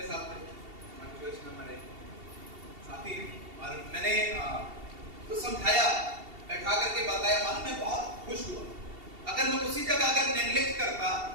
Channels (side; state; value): left; late; 2.7 ms